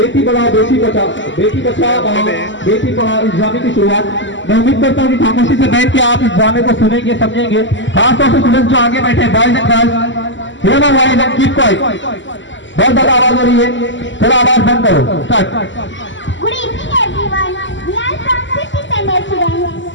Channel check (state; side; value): late; right; 0.54 ms